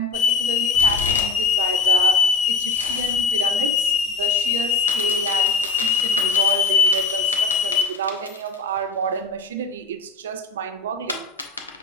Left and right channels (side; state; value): right; quieter; 4.2 dB